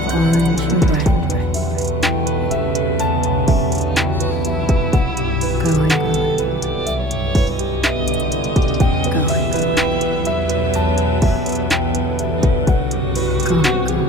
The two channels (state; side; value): normal; both; correlation 0.48